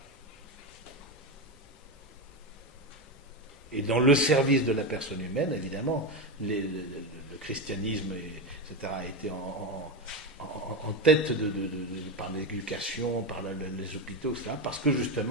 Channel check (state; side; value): normal; both; correlation 0.15